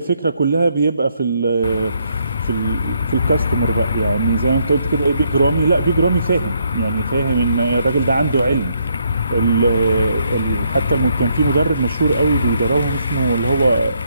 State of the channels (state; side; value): inverted; both; correlation -0.73